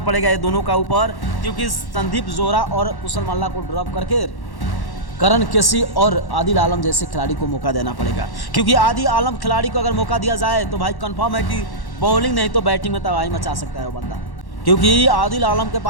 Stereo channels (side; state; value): right; late; 1.1 ms